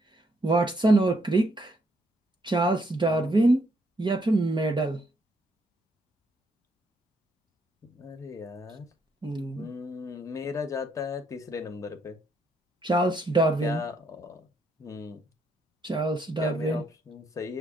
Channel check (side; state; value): both; normal; correlation 0.73